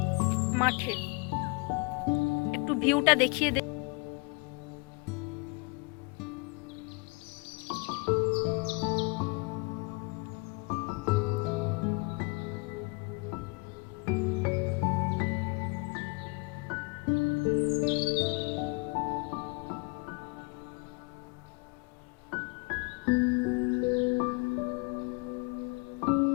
মাঠে। একটু ভিউটা দেখিয়ে দে।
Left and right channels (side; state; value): right; quieter; 29.9 dB